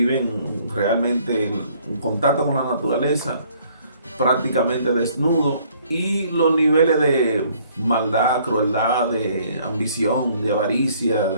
realmente en contacto con la naturaleza, prácticamente desnudo, y los niveles de maldad, crueldad, de ambición, de avaricia,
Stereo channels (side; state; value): both; inverted; correlation -0.61